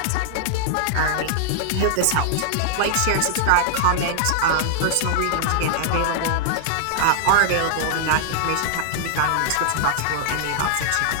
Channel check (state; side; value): different; both; correlation -0.01